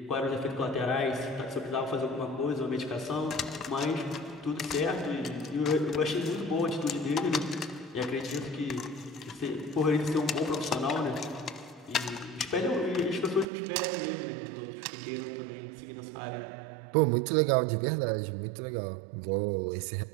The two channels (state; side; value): drops out; left; at 13.5 s